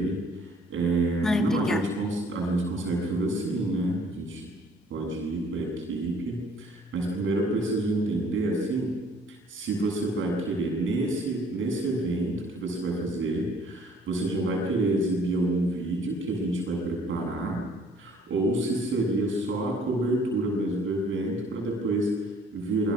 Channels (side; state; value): both; normal; correlation 0.58